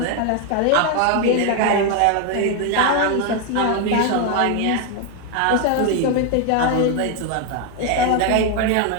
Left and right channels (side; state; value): both; different; correlation 0.01